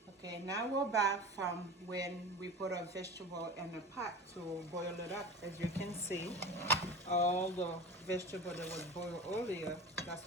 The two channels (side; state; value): both; normal; correlation 0.34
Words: Okay, Okay, now we're back from when we put our vegetable in the pot to boil it up. As you can see, all the vegetable that was boiled earlier, that's